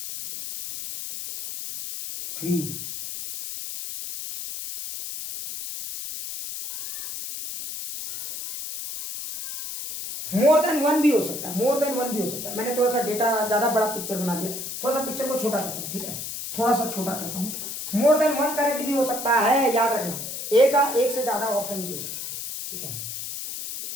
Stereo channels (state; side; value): noise; left; hiss, 7 dB below the sound